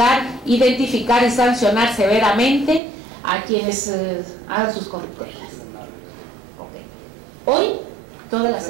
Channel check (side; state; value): left; drops out; at 2.8 s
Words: identificar y sancionar severamente a quienes hagan sus corruptelas. Okay. Hoy, toda la